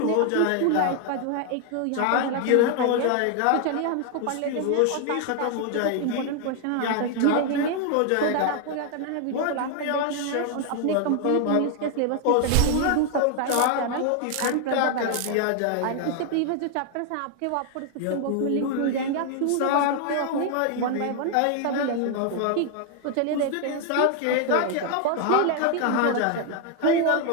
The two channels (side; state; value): both; different; correlation 0.00